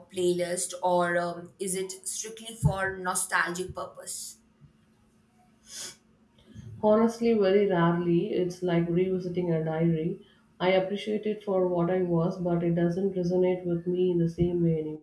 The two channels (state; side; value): identical; both; correlation 1.00